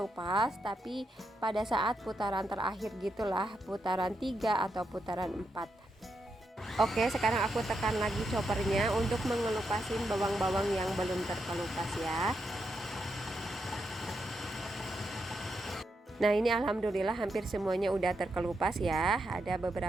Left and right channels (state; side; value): normal; both; correlation 0.83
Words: tapi pada saat putaran terakhir gitulah, putaran 3 atau putaran 4. Oke, sekarang aku tekan lagi choppernya untuk mengelupasin bawang-bawang yang belum terkelupas ya. Nah, ini alhamdulillah hampir semuanya udah terkelupas ya. Ada